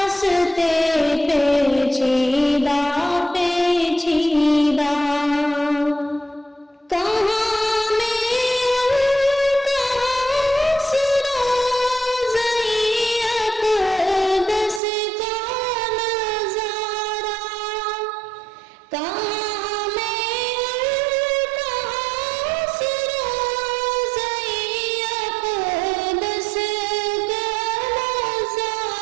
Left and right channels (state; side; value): drops out; left; at 14.8 s